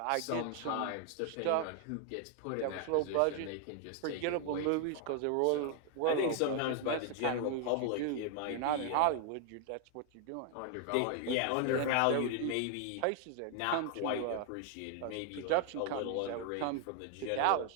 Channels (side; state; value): both; different; correlation 0.00